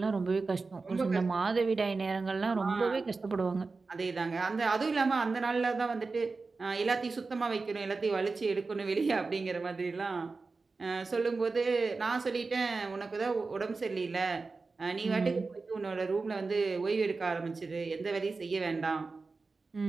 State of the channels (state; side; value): quieter; left; 4.0 dB